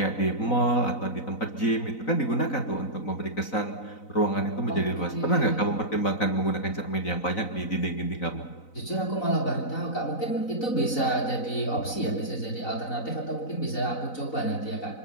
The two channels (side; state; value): right; late; 4.0 ms